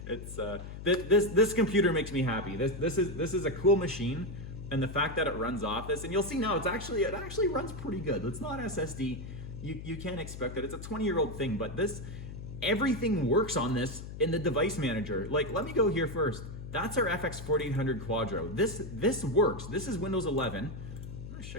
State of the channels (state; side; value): noise; left; hum, 10 dB below the sound